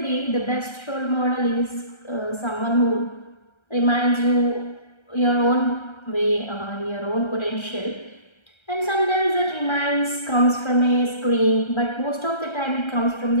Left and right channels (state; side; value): late; right; 1.3 ms